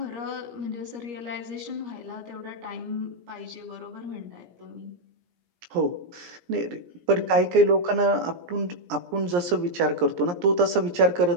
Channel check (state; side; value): late; left; 17 ms